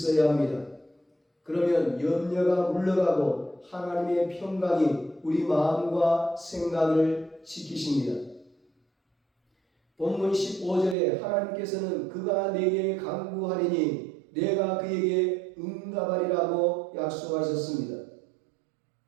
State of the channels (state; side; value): drops out; left; at 11.0 s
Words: 합니다. 그러면 염려가 물러가고 하나님의 평강이 우리 마음과 생각을 지키십니다. 본문 15절에 하나님께서는 그가 내게 간구하리니 내가 그에게 응답하리라고 약속하셨습니다.